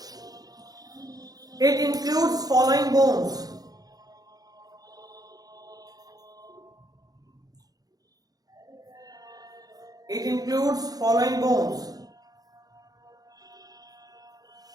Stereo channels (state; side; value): late; left; 0.18 ms